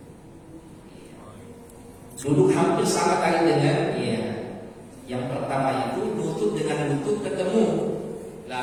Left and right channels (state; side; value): identical; both; correlation 1.00